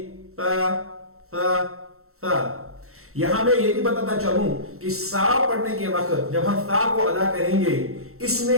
تا تا تا. یہاں میں یہ بھی بتاتا چلوں کہ سا پڑھنے کے وقت جب ہم تا کو ادا کریں گے، اس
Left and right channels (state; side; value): late; left; 0.63 ms